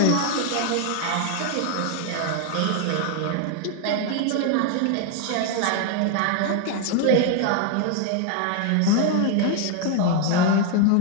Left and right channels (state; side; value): different; both; correlation 0.01